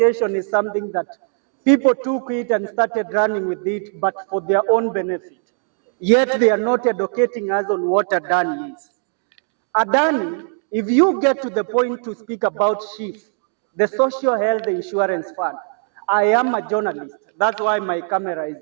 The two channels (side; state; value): left; silent; 56 dB below the other